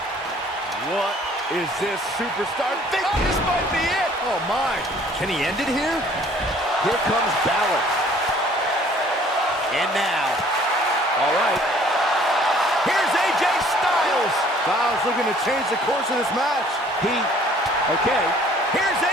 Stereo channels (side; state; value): both; normal; correlation 0.56